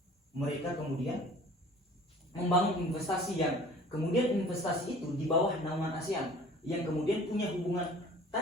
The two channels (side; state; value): both; normal; correlation 0.48